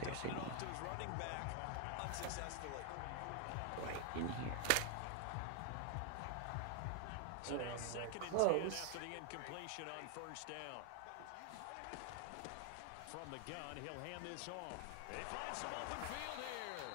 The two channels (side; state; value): both; different; correlation 0.00